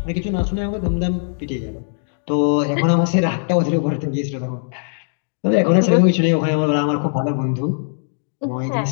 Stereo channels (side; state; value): right; silent; digital silence